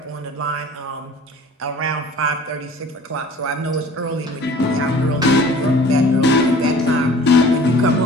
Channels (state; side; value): normal; both; correlation 0.47